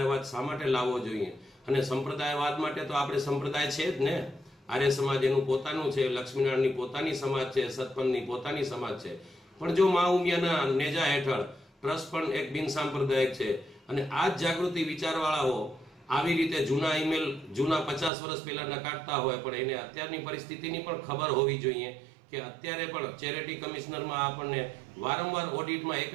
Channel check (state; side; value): drops out; left; at 18.1 s